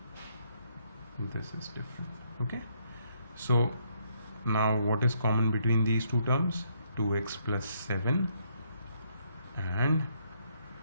This is different. Okay. So now what is common between these two terms? 2x plus 7 and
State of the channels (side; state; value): both; inverted; correlation -0.72